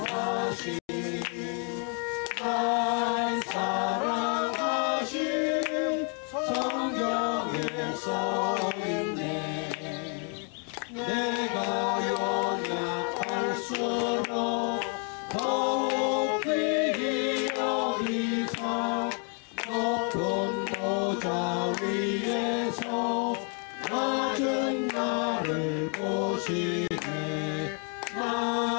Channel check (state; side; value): quieter; right; 39.6 dB